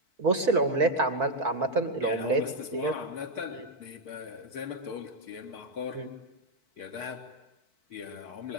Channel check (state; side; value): late; left; 4.5 ms